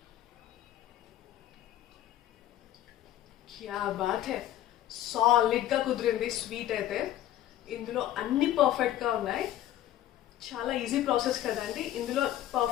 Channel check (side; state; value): right; quieter; 12.8 dB